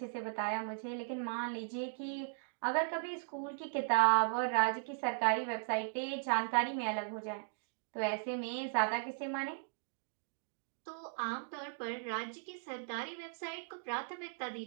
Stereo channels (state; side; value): silent; left; digital silence